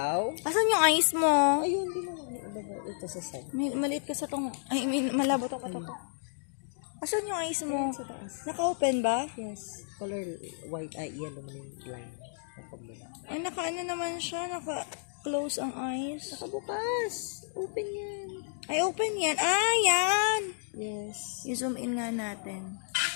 Asan yung ice mo? Ayun, di mo lang. Ito sa side. Maliit ka sa tong, I mean, malabo to ka to. Asan yung ice mo? Sa taas. Naka-open ba? Yes. Color white. Ay, yellow man yung line. Napagmula. Ay, naka-ano naman siya, naka-close ang eyes. Nakabukas. Open yan. Ay, open yan. Ah, yan! Yes. I-zoom in nga natin.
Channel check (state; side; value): silent; right; digital silence